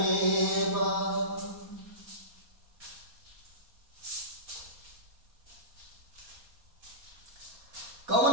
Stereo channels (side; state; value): left; late; 4.2 ms